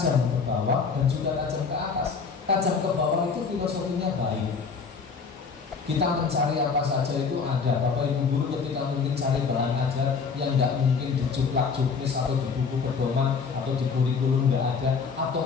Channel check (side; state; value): right; quieter; 5.4 dB